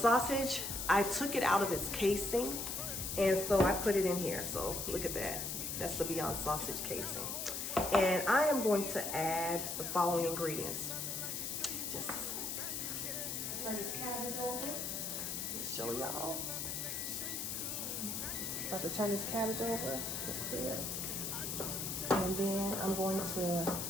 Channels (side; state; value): left; noise; hiss, 3 dB below the sound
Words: I took it out of its casing, and so I put it in here. So, look at that. That's the Beyond sausage casing. And I am going to add the following ingredients. Just turn this cabbage over. Show y'all. About to turn this cabbage over. Clear. And then I'm going to,